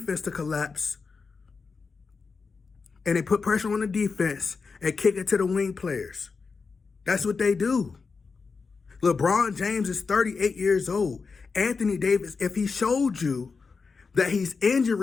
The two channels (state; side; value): quieter; right; 4.8 dB